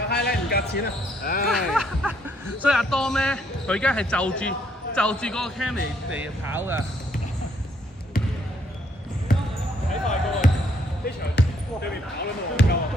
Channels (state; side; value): normal; both; correlation 0.69